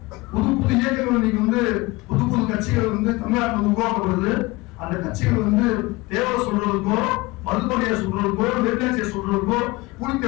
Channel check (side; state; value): right; quieter; 22.2 dB